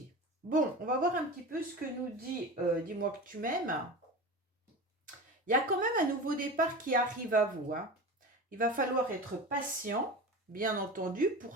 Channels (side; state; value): both; normal; correlation 0.29